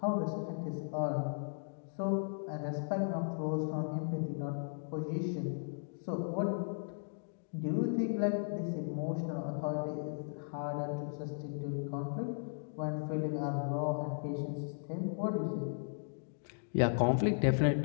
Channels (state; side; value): silent; right; digital silence